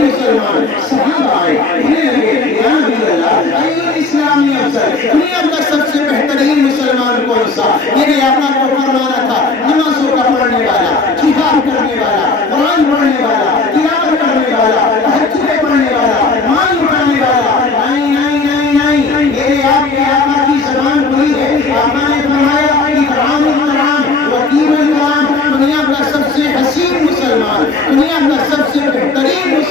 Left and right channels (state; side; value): quieter; right; 3.9 dB